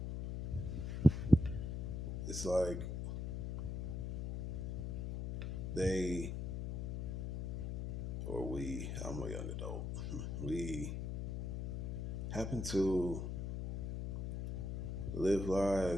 It's like they or we, I'm a young adult, we happen to live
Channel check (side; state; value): left; noise; hum, 3 dB below the sound